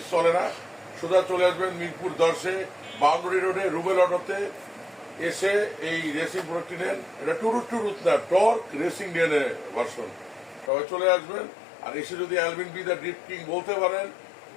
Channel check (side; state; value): right; drops out; at 10.7 s